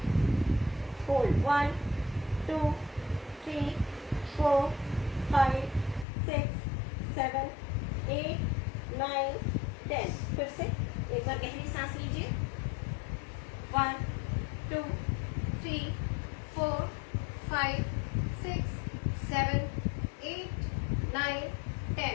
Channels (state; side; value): drops out; right; at 6.1 s